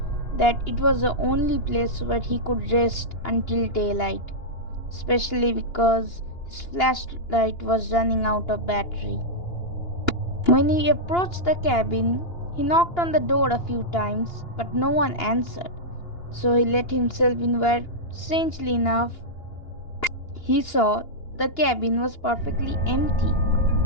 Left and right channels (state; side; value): late; right; 2.8 ms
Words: that it was the only place where he could rest until daylight, especially because his flashlight was running out of battery. When he approached the cabin, he knocked on the door a few times, but no one answered. So he let himself in where, strangely enough, he saw the cabin was perfectly empty,